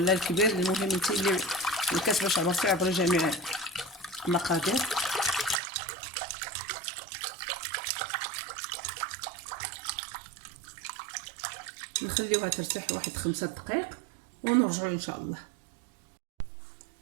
الكبير، المهم انت اللي الكاس باش عبرتي عبري جميع المقادير. نخليوها ترتاح واحد 5 دقائق ونرجعوا ان شاء الله.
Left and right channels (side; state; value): left; drops out; at 5.6 s